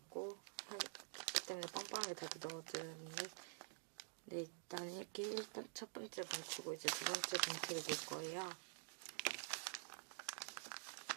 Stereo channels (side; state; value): left; silent; digital silence